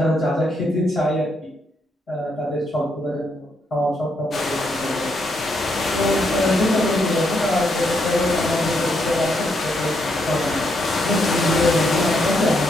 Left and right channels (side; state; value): both; normal; correlation 0.77